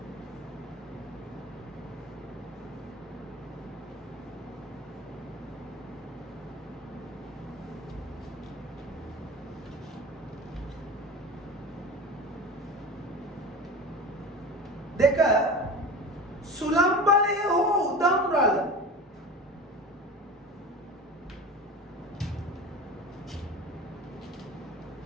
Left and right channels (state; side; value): normal; both; correlation 0.32